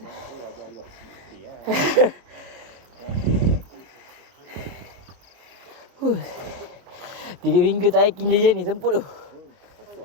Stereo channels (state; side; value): late; left; 25 ms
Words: Huh. 3 minggu tak hiking je ni semput tu.